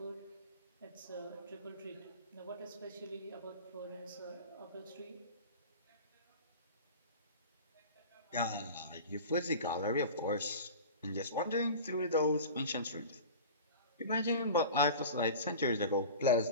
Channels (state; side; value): inverted; both; correlation -0.35